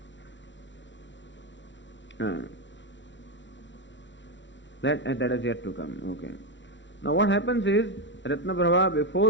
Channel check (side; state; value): right; late; 0.54 ms